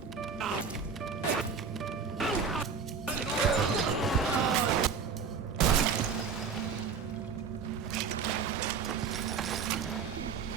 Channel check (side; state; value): left; quieter; 6.0 dB